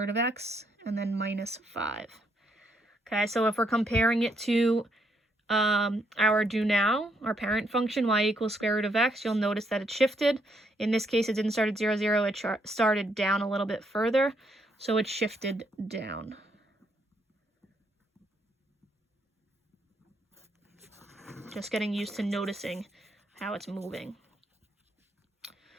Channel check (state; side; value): normal; both; correlation 0.74